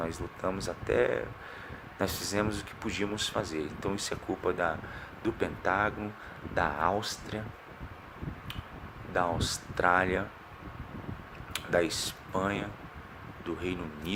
lutamos nós fizemos o que podíamos fazer. Então isso é culpa do Pentágono, da Áustria, da Austrália, da Espanha, do Reino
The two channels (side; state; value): both; identical; correlation 1.00